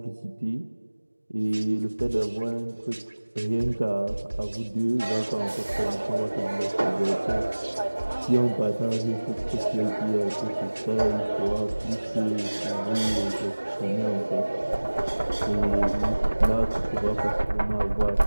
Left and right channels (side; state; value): both; inverted; correlation -1.00